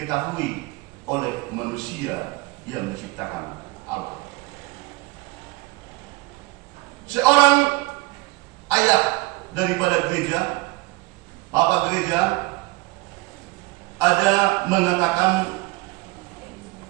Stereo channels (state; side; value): quieter; left; 23.5 dB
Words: oleh manusia yang diciptakan Allah. Seorang ayah daripada gereja, Bapak gereja, ada mengatakan